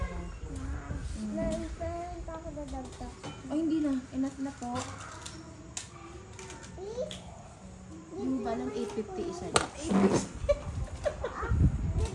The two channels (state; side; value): identical; both; correlation 1.00